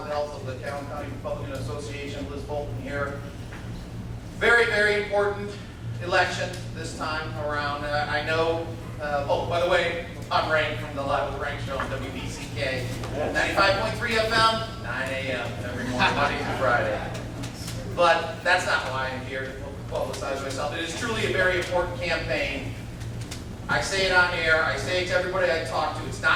with the help of the Calhoun County Republican Association. Liz Bolton here. Very, very important election this time around. I know, oh, by the way, I'm Rank from the Live with Rank show on WBCK. 95.3 FM, 9 a.m. every morning, Monday through Friday. But that's not why I'm here to publicize myself. It is truly a very important campaign. I say it on air, I say it to everybody I talk to. It's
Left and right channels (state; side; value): identical; both; correlation 1.00